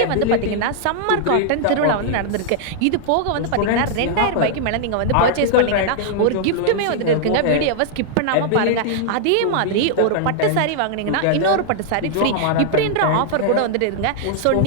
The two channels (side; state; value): both; different; correlation -0.01